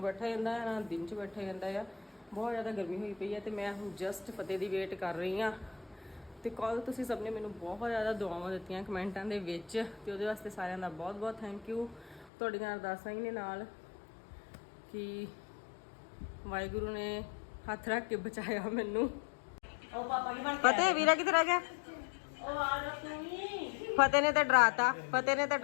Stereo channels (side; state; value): right; drops out; at 12.3 s